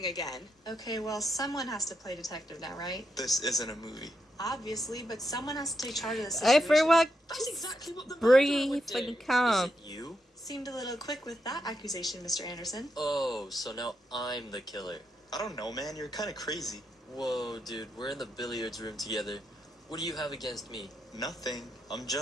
again. Okay, well, someone has to play detective now, right? This isn't a movie. Obviously, but someone has to take charge of the situation. Everyone That's exactly what the murderer breathe would do. and calm. You? Seemed a little quick with that accusation, Mr. Anderson. Oh, so now I'm the killer. I don't know, man. You're kind of crazy. Whoa, dude, we're in the billiards room together. What do you have against me? Nothing. I'm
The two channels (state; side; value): normal; both; correlation 0.83